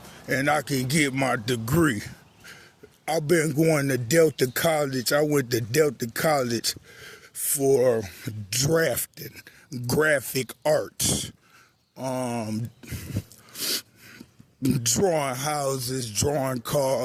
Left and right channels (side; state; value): both; identical; correlation 1.00